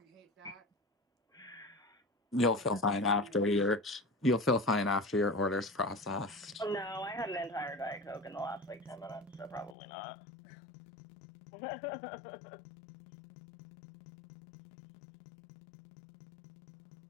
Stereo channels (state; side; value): drops out; right; at 9.8 s